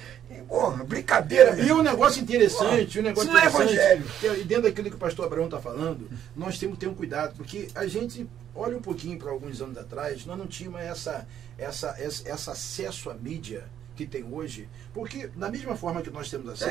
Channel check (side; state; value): left; quieter; 10.2 dB